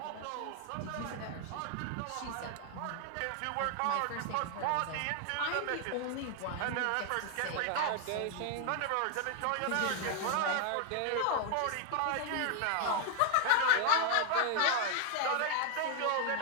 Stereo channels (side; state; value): both; different; correlation 0.00